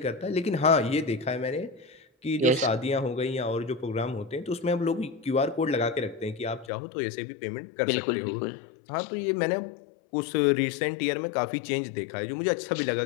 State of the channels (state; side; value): drops out; right; at 6.7 s